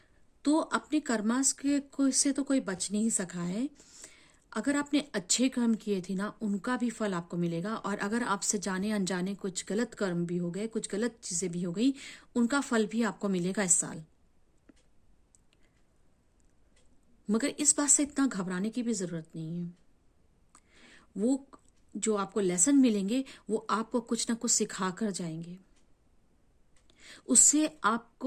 तो अपने कर्मास के को से तो कोई बच नहीं सका है। अगर आपने अच्छे कर्म किए थे ना, उनका भी फल आपको मिलेगा, और अगर आपसे जाने अनजाने कुछ गलत कर्म भी हो गए, कुछ गलत चीजें भी हो गई, उनका फल भी आपको मिलेगा इस साल। मगर इस बात से इतना घबराने की भी जरूरत नहीं है। वो जो आपको लेसन मिलेंगे वो आपको कुछ ना कुछ सिखा कर जाएंगे। उससे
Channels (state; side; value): identical; both; correlation 1.00